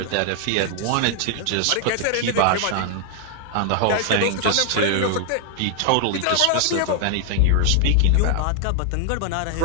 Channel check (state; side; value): different; both; correlation 0.00